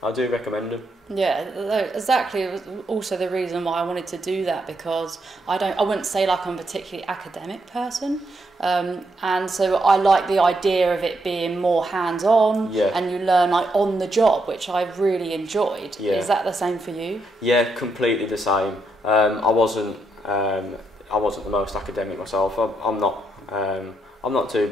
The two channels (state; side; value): normal; both; correlation 0.79